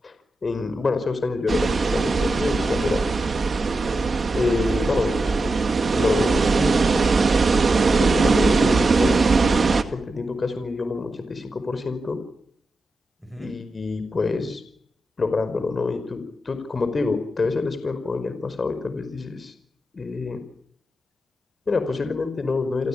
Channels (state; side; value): normal; both; correlation 0.89